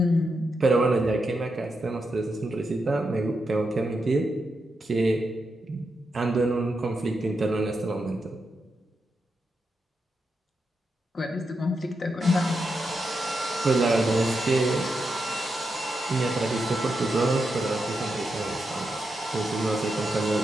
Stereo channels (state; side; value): normal; both; correlation 0.85